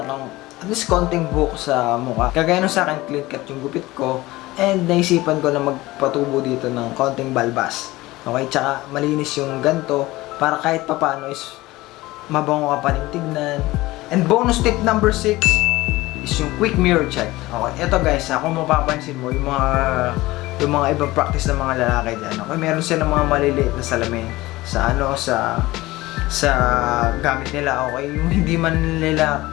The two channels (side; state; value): right; quieter; 19.1 dB